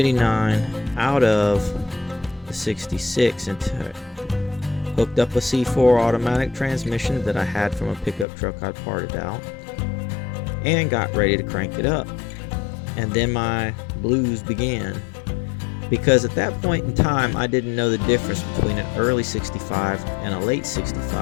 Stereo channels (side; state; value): right; drops out; at 8.2 s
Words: out of the 66 into it. Hooked up a C4 automatic transmission that I had from a pickup truck I'd parted out, and got ready to crank it up. And then my blues began, because at that point in time I didn't know the difference between an early 65 and a late